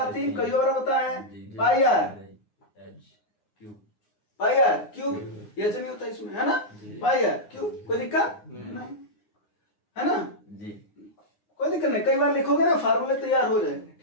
कई और बताए पाई आर, पाई आर क्यूब। ये नहीं होता इसमें, है ना? पाई आर क्यूब। कोई दिक्कत नहीं, है ना? कोई दिक्कत नहीं, कई बार लिखोगे ना फार्मूले तैयार हो जाएंगे,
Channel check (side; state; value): right; late; 9.6 ms